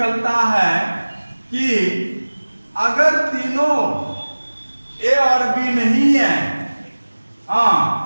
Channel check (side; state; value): both; inverted; correlation -1.00